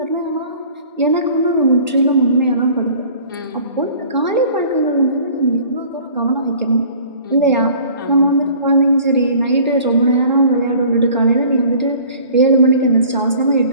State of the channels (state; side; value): inverted; both; correlation -0.49